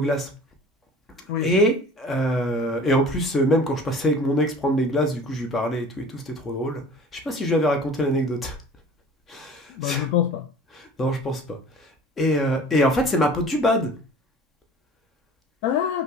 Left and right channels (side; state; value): both; normal; correlation 0.44